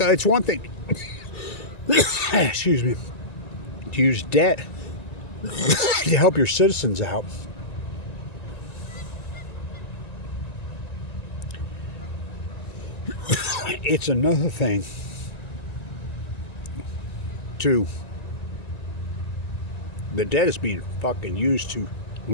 one thing. Excuse me. To use debt to help your citizens out. It's another thing to the debt is being fucking used to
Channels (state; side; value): late; right; 1.9 ms